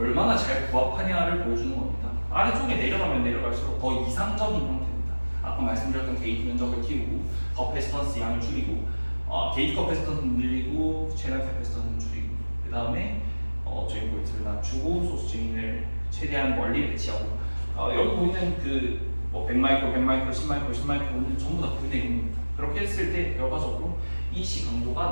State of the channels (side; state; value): both; inverted; correlation -1.00